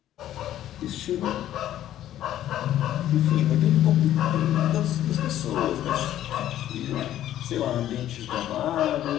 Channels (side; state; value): right; quieter; 12.3 dB